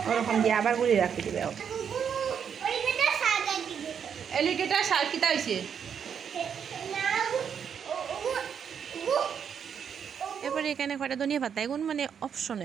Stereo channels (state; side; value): quieter; left; 7.6 dB